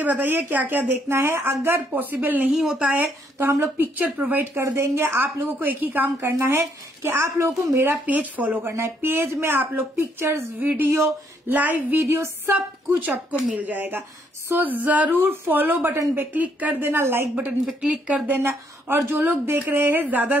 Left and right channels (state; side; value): normal; both; correlation 0.71